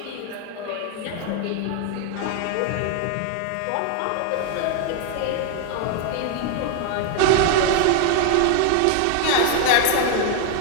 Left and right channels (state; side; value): different; both; correlation 0.00